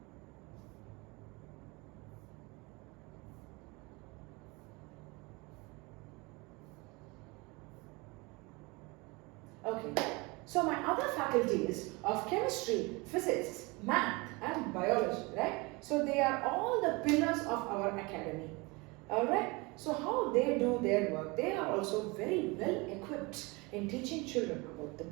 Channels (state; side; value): quieter; left; 26.0 dB